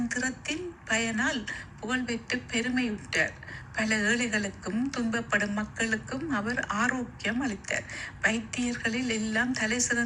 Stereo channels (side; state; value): both; identical; correlation 1.00